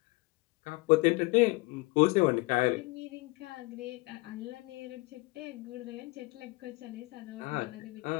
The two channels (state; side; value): quieter; right; 24.6 dB